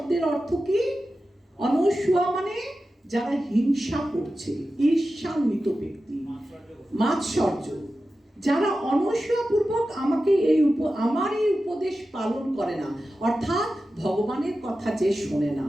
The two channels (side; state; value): both; normal; correlation 0.93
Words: অর্থ কি? অনস্বয়া মানে যারা হিংসা করছে, ঈর্ষান্বিত ব্যক্তি, মাৎসর্য, যারা অনস্বপূর্বক আমার এই উপদেশ পালন করে না, অর্থাৎ ভগবানের কথা যে শোনে না,